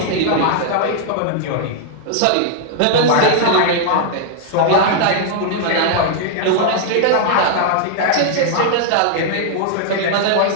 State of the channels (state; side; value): different; both; correlation -0.01